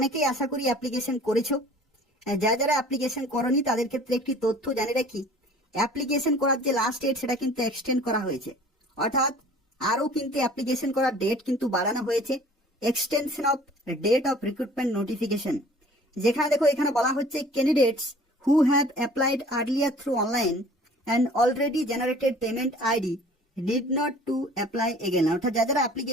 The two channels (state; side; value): normal; both; correlation 0.49